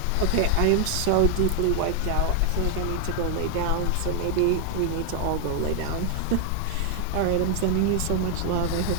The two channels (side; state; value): both; different; correlation 0.00